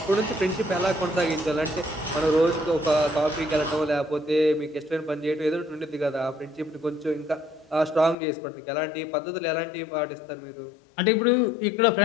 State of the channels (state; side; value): drops out; right; at 8.2 s